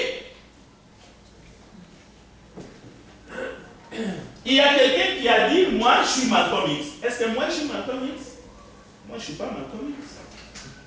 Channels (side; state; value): both; identical; correlation 1.00